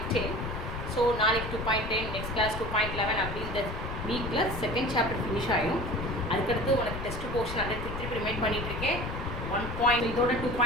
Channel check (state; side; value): noise; left; rumble, 6 dB below the sound